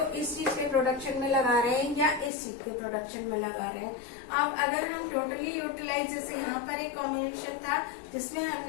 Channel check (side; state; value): right; drops out; at 2.3 s